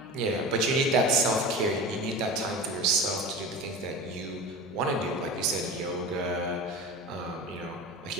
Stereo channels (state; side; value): noise; left; hum, 28 dB below the sound